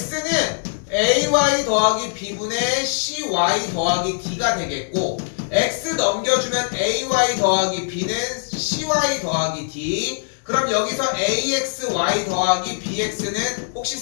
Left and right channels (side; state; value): right; silent; digital silence